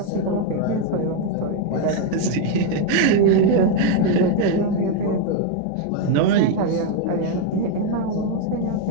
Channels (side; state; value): both; different; correlation 0.01